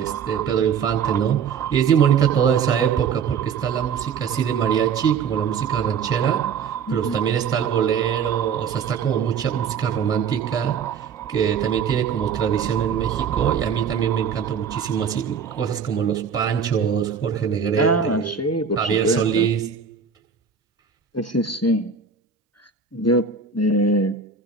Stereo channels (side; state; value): left; quieter; 6.5 dB